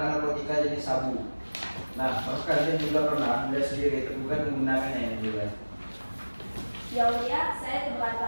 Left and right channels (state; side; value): inverted; both; correlation -1.00